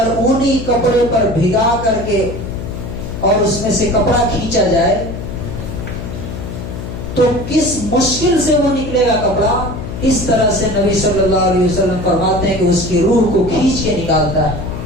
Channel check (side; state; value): left; noise; hum, 8 dB below the sound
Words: اونی کپڑے پر بھگا کر کے اور اس میں سے کپڑا کھینچا جائے تو کس مشکل سے وہ نکلے گا کپڑا، اس طرح سے نبی صلی اللہ علیہ وسلم فرماتے ہیں کہ اس کی روح کو کھینچ کے نکالتا ہے۔